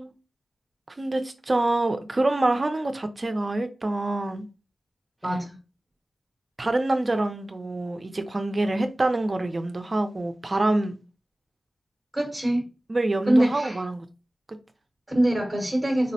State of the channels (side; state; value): both; normal; correlation 0.98